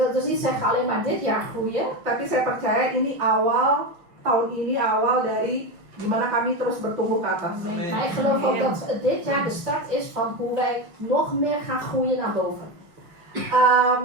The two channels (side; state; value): left; late; 5.7 ms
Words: dus niet zeggen alleen maar dit jaar groeien. tapi saya percaya ini tahun ini awal dari gimana kami terus bertumbuh ke atas. Maar ik geloof ook dat dit jaar de start is van hoe wij nog meer gaan groeien naar boven.